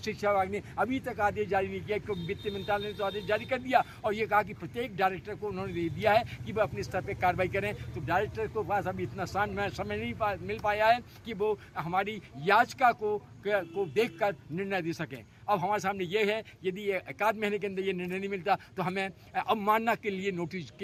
विभाग ने अभी तक आदेश जारी नहीं किया, क्योंकि वित्त मंत्रालय ने तो आदेश जारी कर दिया और ये कहा कि प्रत्येक डायरेक्टर को उन्होंने दे दिया है कि वह अपने स्तर पर कार्रवाई करें। तो डायरेक्टर को पास अभी इतना समय नहीं मिल पाया है कि वो हमारी याचिका को देखकर निर्णय दे सकें। अब हमारे सामने ये है, यदि 1 महीने के अंदर ये निर्णय नहीं मिलता तो हमें अवमानना के लिए नोटिस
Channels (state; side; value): identical; both; correlation 1.00